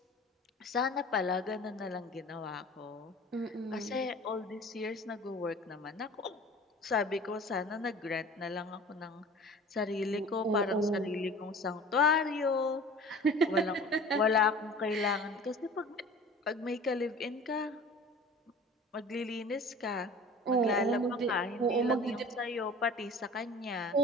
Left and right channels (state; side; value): normal; both; correlation 0.42